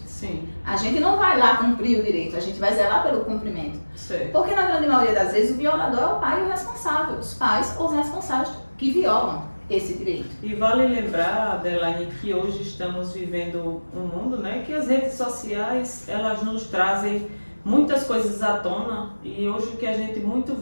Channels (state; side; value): inverted; both; correlation -1.00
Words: Sim. A gente não vai lá cumprir o direito, a gente vai zelar pelo cumprimento. Certo. Porque na grande maioria das vezes o violador é o pai e o responsável, os pais ou os responsáveis que violam esse direito. E vale lembrar, Adelaine, que hoje estamos vivendo um mundo, né, que as redes sociais, elas nos trazem muitas coisas à tona, e hoje o que a gente muito